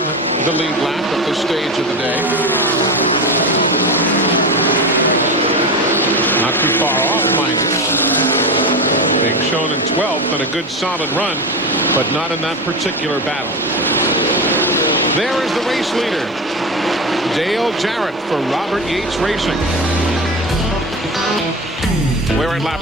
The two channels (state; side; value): normal; both; correlation 0.23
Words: the lead lap at this stage of the day. Not too far off, mind you. Being shown in 12th and a good solid run, but not in that particular battle. There is the race leader, Dale Jarrett for Robert Yates Racing. We're in lap